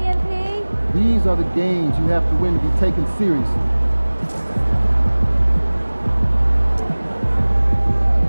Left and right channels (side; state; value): both; inverted; correlation -1.00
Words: MP. These are the games you have to win to be taken seriously.